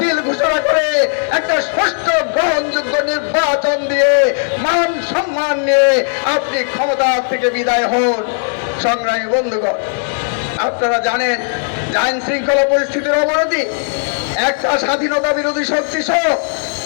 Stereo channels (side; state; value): right; silent; 69 dB below the other